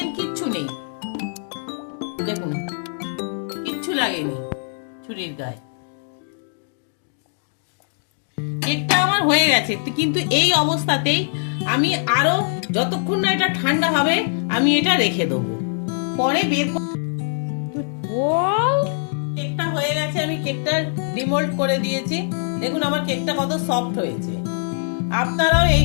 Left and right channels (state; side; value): silent; right; digital silence